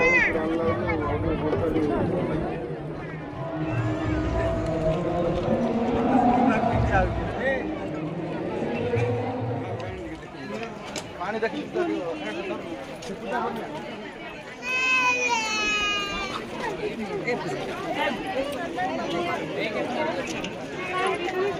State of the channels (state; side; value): identical; both; correlation 1.00